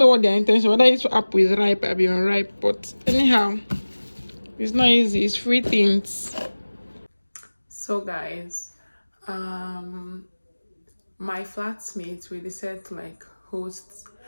what their intention, whether it's apple is ripe or unripe, but anyhow, it's not easy. It's free things. So guys, my flatmates, we decided to like host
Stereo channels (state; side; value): inverted; both; correlation -1.00